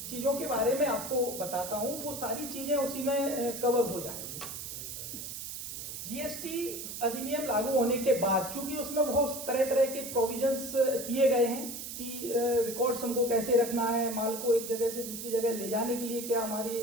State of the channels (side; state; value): right; noise; hiss, 8 dB below the sound